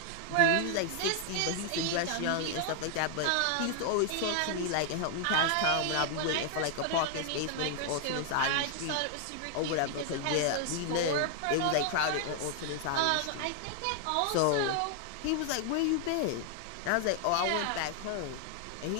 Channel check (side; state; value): both; different; correlation 0.00